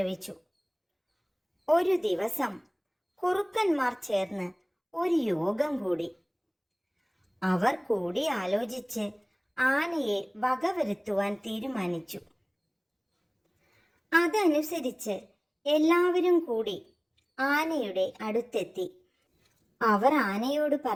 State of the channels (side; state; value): both; identical; correlation 1.00